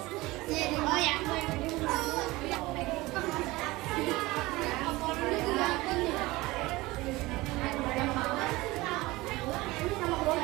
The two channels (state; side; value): quieter; left; 20.4 dB